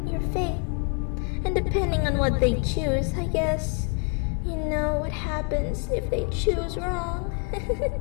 your fate. And depending on what they choose, I guess, you know what happens if they choose wrong.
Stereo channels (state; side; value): quieter; right; 35.9 dB